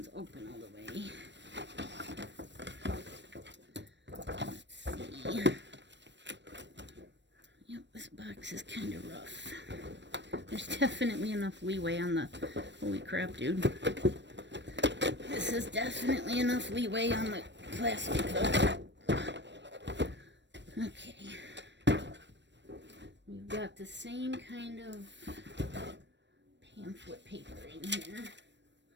open all the way. Let's see. Yep, this box is kind of rough. There's definitely enough leeway on the... Holy crap, dude. This is definitely enough leeway on the plastic, though. Okay. We've got the same kind of pamphlet paper in here.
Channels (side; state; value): left; late; 0.52 ms